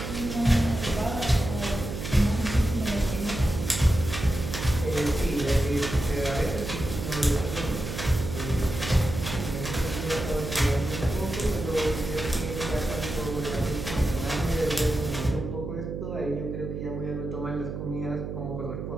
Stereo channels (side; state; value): right; noise; hum, 6 dB below the sound